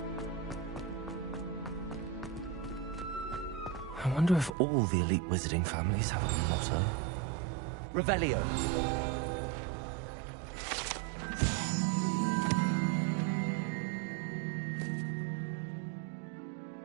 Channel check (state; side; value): drops out; left; at 4.5 s